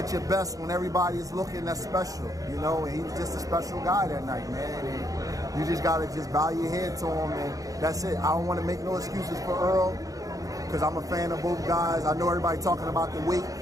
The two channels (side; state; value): left; late; 0.17 ms